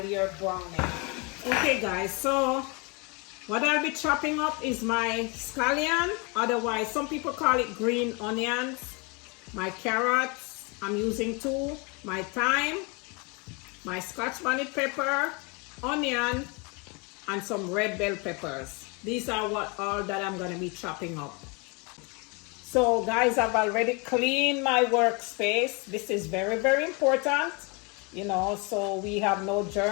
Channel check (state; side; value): quieter; right; 30.7 dB